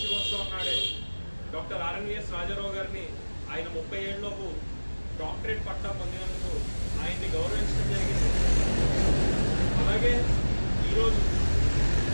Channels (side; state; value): both; inverted; correlation -1.00